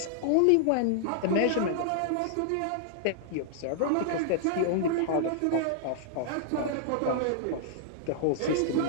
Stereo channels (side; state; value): both; different; correlation -0.01